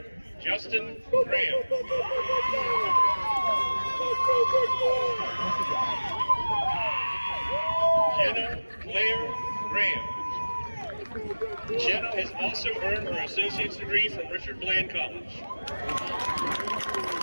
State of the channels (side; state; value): both; inverted; correlation -1.00